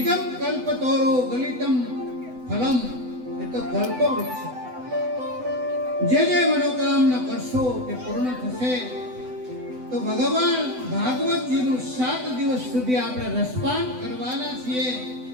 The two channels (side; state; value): left; late; 8.0 ms